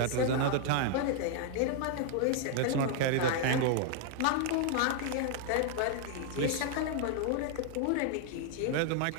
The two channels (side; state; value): both; different; correlation 0.00